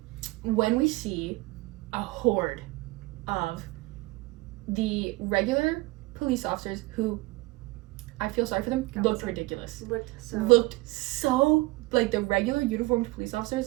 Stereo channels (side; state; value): left; quieter; 22.6 dB